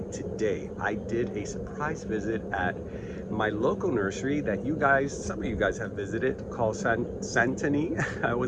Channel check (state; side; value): identical; both; correlation 1.00